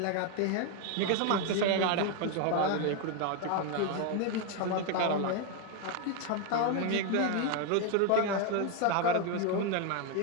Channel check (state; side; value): different; both; correlation 0.01